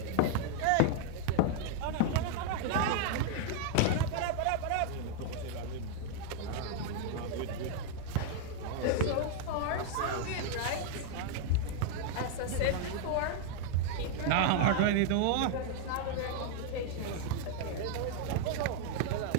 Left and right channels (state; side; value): different; both; correlation 0.00